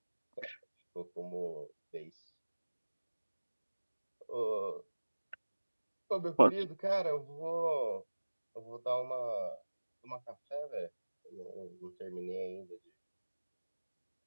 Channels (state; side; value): inverted; both; correlation -1.00